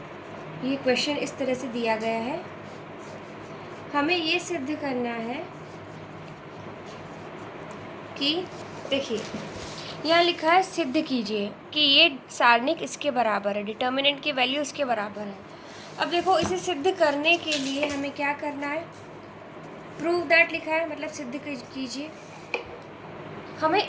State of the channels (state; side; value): identical; both; correlation 1.00